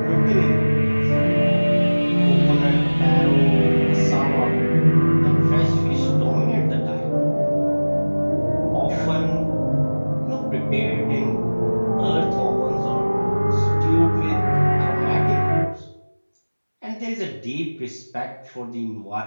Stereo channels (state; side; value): inverted; both; correlation -1.00